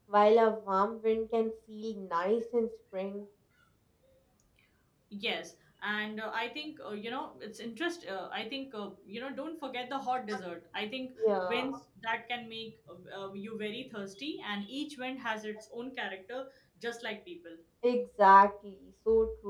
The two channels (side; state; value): both; identical; correlation 1.00